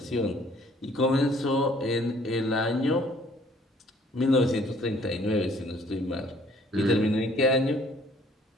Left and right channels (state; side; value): normal; both; correlation 0.59